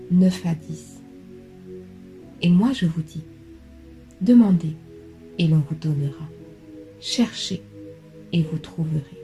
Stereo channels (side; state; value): both; identical; correlation 1.00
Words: 9 à 10. Et moi je vous dis, demandez et l'on vous donnera. Cherchez et vous trouverez.